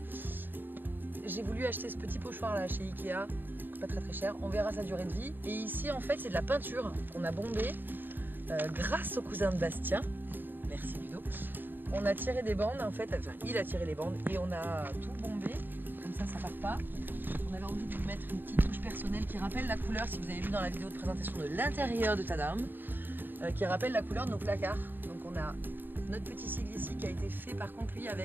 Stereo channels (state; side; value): late; left; 0.093 ms